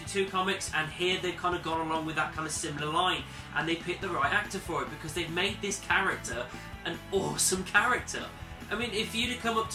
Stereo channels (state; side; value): identical; both; correlation 1.00